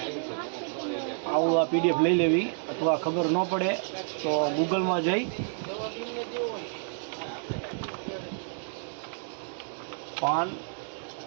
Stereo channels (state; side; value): silent; left; digital silence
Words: આવું આ PDF લઈ લેવી, અથવા ખબર ન પડે તો ગૂગલમાં જઈ પાન